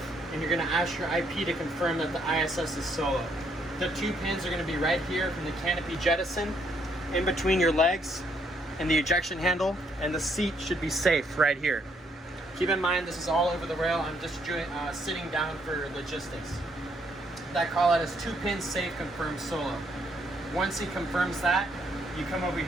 and you're going to ask your IP to confirm that the ISS is solo. The 2 pins are going to be right here from the canopy jettison, in between your legs and the ejection handle, and the seat should be safe right here. Keep in mind, this is all over the rail. I'm just sitting down for logistics. That call out is 2 pins safe, confirmed solo. Once he confirms that, you come over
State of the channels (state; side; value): normal; both; correlation 0.71